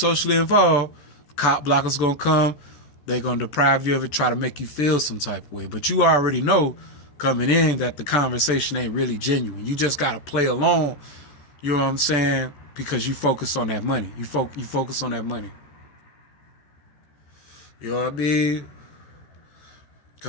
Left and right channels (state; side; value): late; right; 14 ms